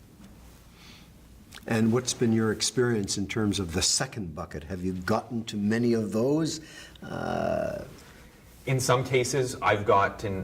And what's been your experience in terms of the second bucket? Have you gotten to many of those? In some cases, I've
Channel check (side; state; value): both; identical; correlation 1.00